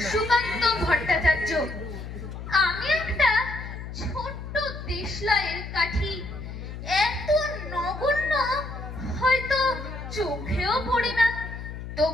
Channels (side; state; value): left; noise; hum, 9 dB below the sound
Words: সুকান্ত ভট্টাচার্য। আমি একটা ছোট্ট দেশলাইয়ের কাঠি, এত নগণ্য হয়তো চোখেও পড়ে না,